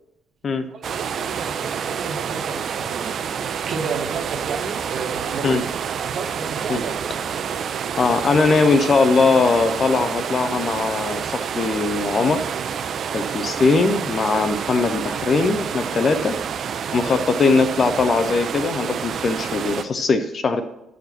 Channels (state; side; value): normal; both; correlation 0.77